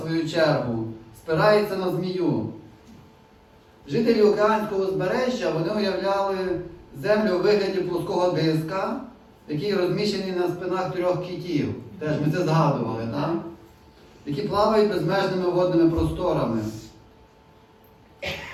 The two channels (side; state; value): both; identical; correlation 1.00